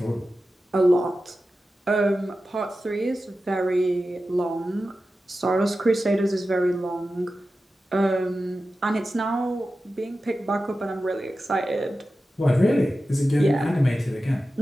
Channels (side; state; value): both; normal; correlation 0.93